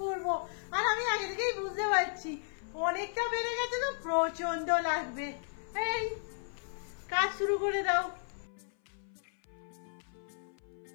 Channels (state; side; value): silent; right; 55 dB below the other